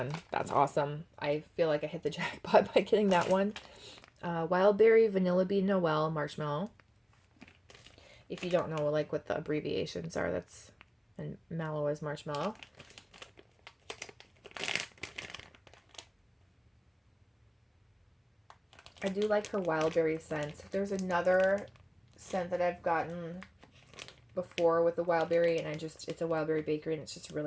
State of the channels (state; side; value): identical; both; correlation 1.00